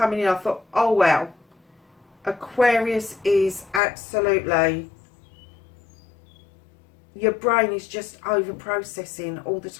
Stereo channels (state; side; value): drops out; right; at 3.8 s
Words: in, I thought, oh wow, Aquarius is absolutely, your brain is just over processing all the